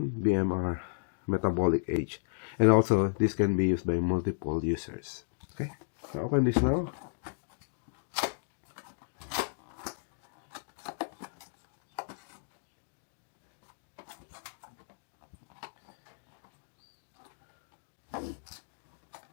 BMR, metabolic age. And also, this can be used by multiple users. Okay, so open this now.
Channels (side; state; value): right; silent; digital silence